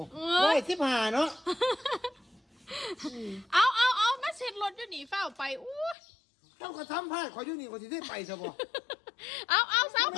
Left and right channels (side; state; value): right; drops out; at 6.0 s